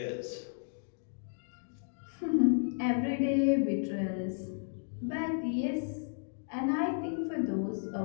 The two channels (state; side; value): silent; right; digital silence